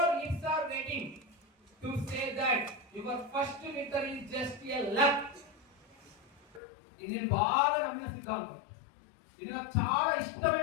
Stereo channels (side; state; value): right; drops out; at 6.6 s